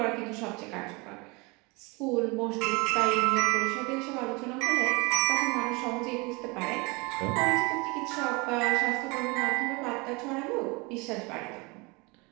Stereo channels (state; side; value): quieter; left; 27.1 dB